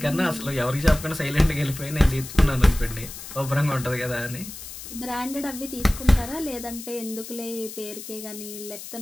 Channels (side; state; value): left; noise; hiss, 12 dB below the sound